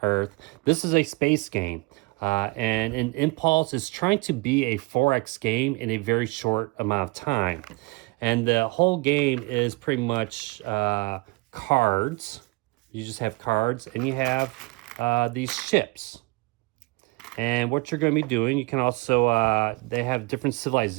Earth. This is a space game. And an Impulse is trying to be a 4X game in a very short amount of time. And the whole game is pretty much cards. You just have cards, and you have these ships. And what you're going to be doing, you can also, they have different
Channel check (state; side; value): quieter; left; 25.7 dB